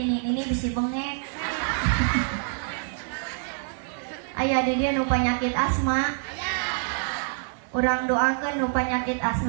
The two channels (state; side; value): silent; left; 61 dB below the other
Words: bisi bengek. Aya di dia nu panyakit asma. Urang doakeun nu panyakit